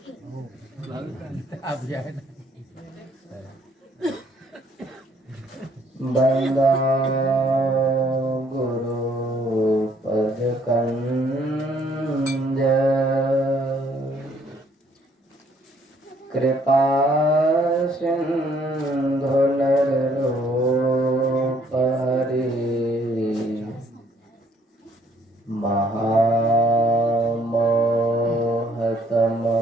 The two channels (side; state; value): both; normal; correlation 0.65